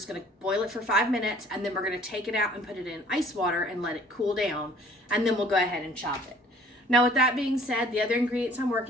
gonna boil it for 5 minutes, and then we're gonna take it out and put it in ice water and let it cool down, and then we'll go ahead and chop it. Now, with that being said, the other ingredients I'm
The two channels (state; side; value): normal; both; correlation 0.54